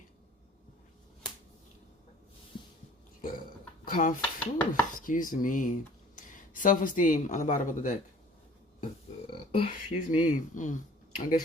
Excuse me. Self-esteem on the bottom of the deck. Excuse me. I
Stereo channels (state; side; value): normal; both; correlation 0.49